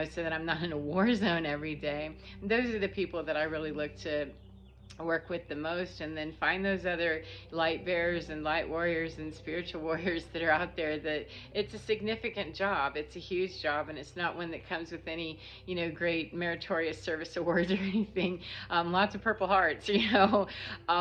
that I'm not in a war zone every day. And those are the people that I really look to work with the most, and then find those other light bearers and light warriors and spiritual warriors that are out there. That it's a significant job, it's a huge job, and it's not one that comes with any great meritorious service awards or anything. Lots of Purple Hearts,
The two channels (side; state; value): both; identical; correlation 1.00